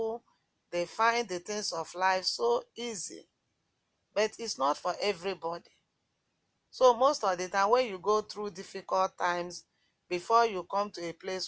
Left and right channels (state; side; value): identical; both; correlation 1.00